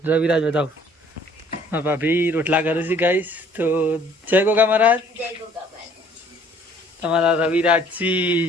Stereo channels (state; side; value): normal; both; correlation 0.58